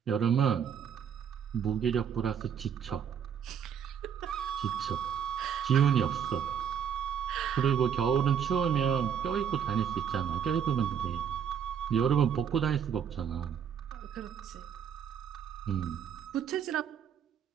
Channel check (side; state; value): left; quieter; 8.1 dB